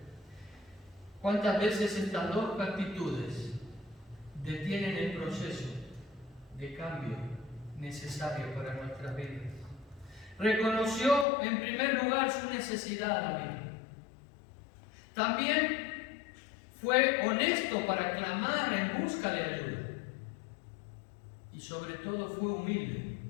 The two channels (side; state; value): right; drops out; at 11.2 s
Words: ¿Cuántas veces estas dos actitudes detienen el proceso de cambio necesario para nuestras vidas? Reconoció en primer lugar su necesidad, David. También fue honesto para clamar en busca de ayuda. Y sobre todo fue humilde